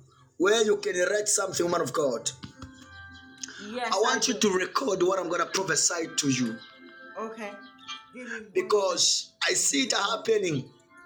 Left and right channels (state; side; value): identical; both; correlation 1.00